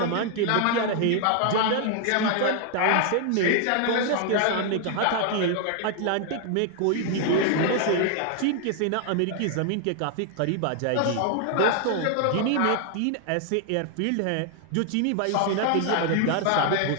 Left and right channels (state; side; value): different; both; correlation 0.00